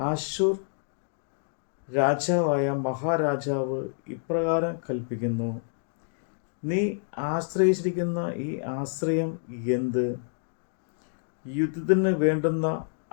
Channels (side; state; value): right; silent; digital silence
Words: രാജാവായ മഹാരാജാവ് ഇപ്രകാരം കൽപ്പിക്കുന്നു, നീ ആശ്രയിച്ചിരിക്കുന്ന ഈ ആശ്രയം എന്ത്? യുദ്ധത്തിന് വേണ്ടുന്ന